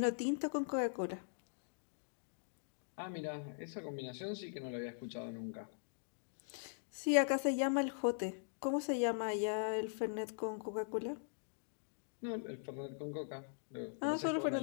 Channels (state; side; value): silent; right; digital silence